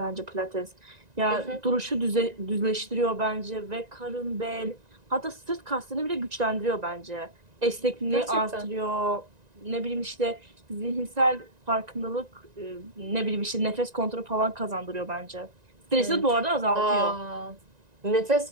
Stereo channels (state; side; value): late; left; 1.9 ms